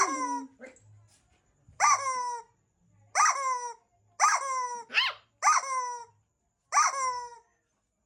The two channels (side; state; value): both; identical; correlation 1.00